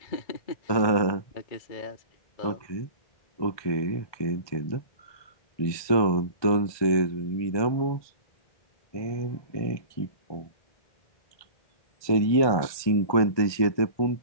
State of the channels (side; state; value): right; late; 1.2 ms